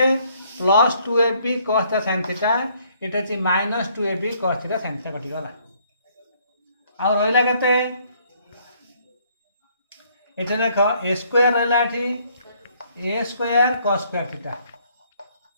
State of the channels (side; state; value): both; inverted; correlation -0.65